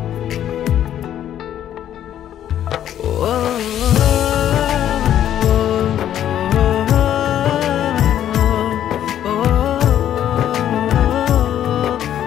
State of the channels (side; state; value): right; quieter; 10.8 dB